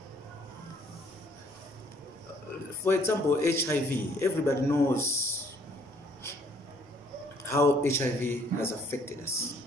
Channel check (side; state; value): both; normal; correlation 0.62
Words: for example, HIV. Everybody knows how HIV has affected us.